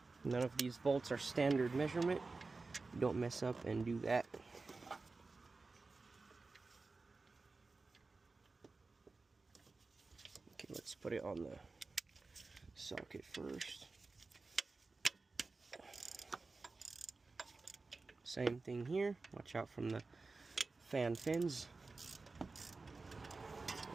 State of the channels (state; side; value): quieter; left; 3.8 dB